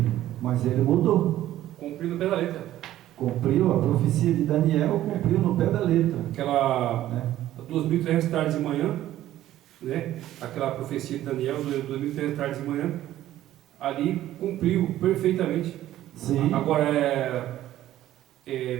mas ele mudou. Cumpriu no pé da letra. Cumpriu a profecia de Daniel, cumpriu no pé da letra. Aquela 2.300 tardes de manhã, né? Aquela profecia de Daniel, 2.300 tardes de manhã, ali cumpriu perfeitamente. Sim. Agora,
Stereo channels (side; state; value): left; quieter; 13.5 dB